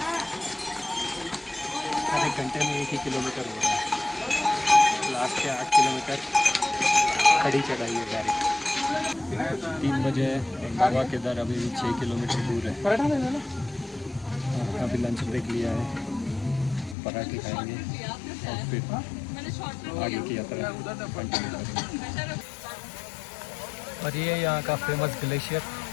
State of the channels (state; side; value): drops out; right; at 16.9 s